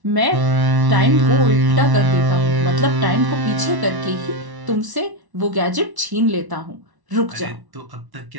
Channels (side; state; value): left; late; 1.1 ms